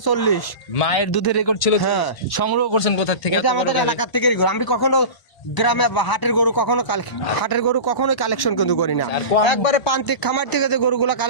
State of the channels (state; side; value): late; right; 1.0 ms